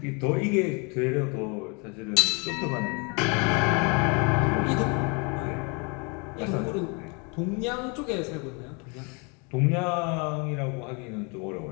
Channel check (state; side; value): quieter; right; 32.7 dB